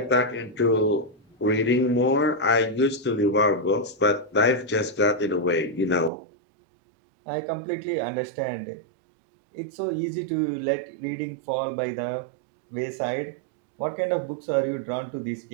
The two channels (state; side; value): drops out; left; at 6.1 s